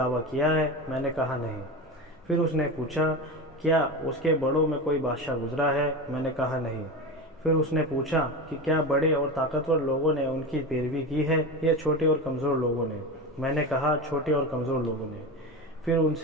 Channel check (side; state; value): both; normal; correlation 0.24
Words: کیا ہے؟ میں نے کہا نہیں۔ پھر اس نے پوچھا کیا اس کے بڑوں میں کوئی بادشاہ گزرا ہے؟ میں نے کہا نہیں۔ پھر اس نے پوچھا کہ کیا بڑے اور طاقتور لوگوں نے ان کی پیروی کی ہے یا چھوٹے اور کمزور لوگوں نے؟ میں نے کہا چھوٹے اور کمزور لوگوں نے۔ پھر ان